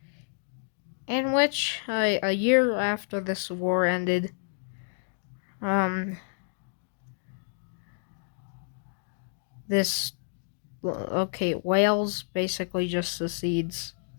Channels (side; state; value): right; silent; 58 dB below the other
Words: In which, a year after this war ended, Wales basically just secedes.